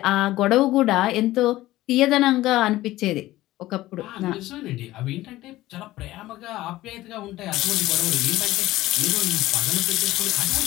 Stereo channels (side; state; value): right; quieter; 16.4 dB